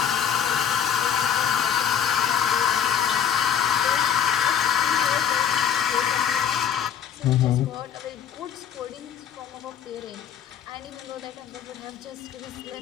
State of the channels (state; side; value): quieter; right; 8.6 dB